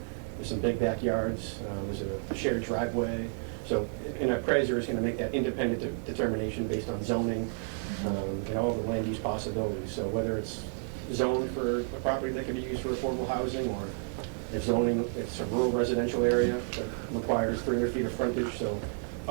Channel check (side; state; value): left; silent; 57 dB below the other